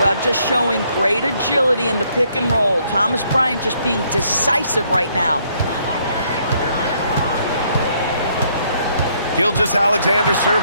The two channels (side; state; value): both; inverted; correlation -0.69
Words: just showing great agility in the pick and roll. Thomas Bryant just being decisive right now. Gilgeous-Alexander